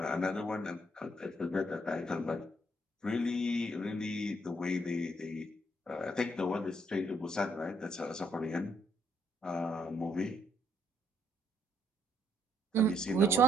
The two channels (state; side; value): normal; both; correlation 0.70